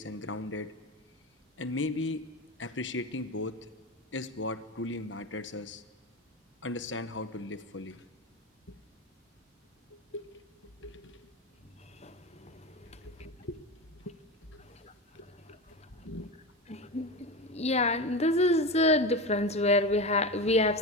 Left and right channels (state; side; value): normal; both; correlation 0.23